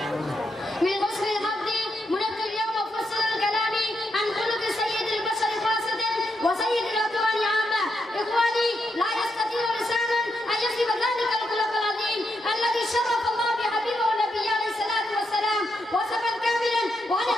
من حسن الحظ منذ اليوم أفصل الكلام عن خلق سيد البشر خاصة وسيد الأكوان عامة. إخواني، لا يستطيع لسانا أن يصف ذلك الخلق العظيم الذي شرف الله بحبيبه النبي عليه الصلاة والسلام وصفا كاملا، وأنا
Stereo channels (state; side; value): normal; both; correlation 0.82